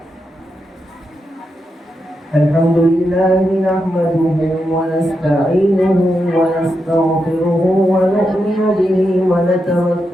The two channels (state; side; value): normal; both; correlation 0.86